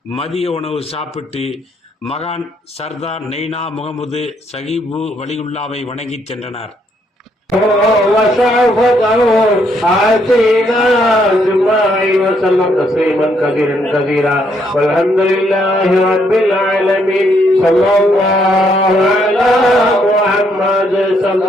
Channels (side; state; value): both; normal; correlation 0.72